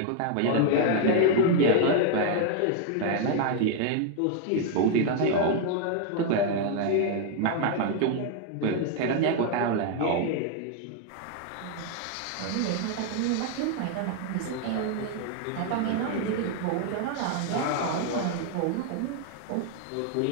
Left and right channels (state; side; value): different; both; correlation 0.00